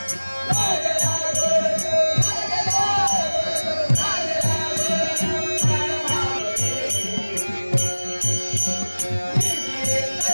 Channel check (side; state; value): both; inverted; correlation -1.00